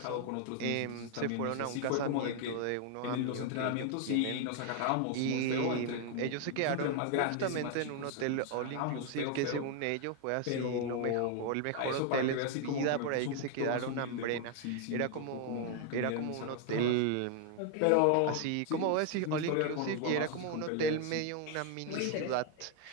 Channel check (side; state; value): both; different; correlation 0.00